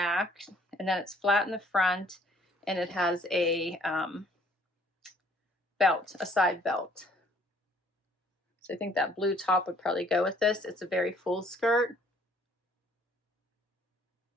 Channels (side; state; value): both; normal; correlation 0.60